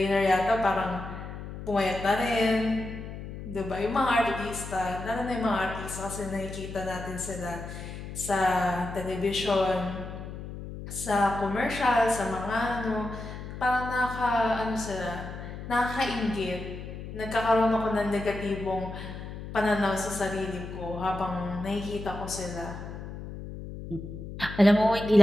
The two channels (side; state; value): left; noise; hum, 10 dB below the sound